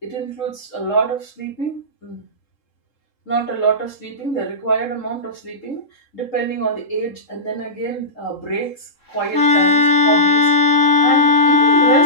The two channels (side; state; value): right; late; 3.7 ms